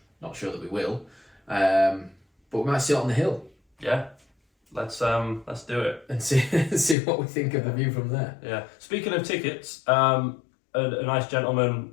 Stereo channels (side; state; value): right; drops out; at 7.0 s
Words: not sure that we will, but we might sit on the hill. Yeah, let's do it and see what we think of the view from there. Yeah. Speaking of tickets, a nice gentleman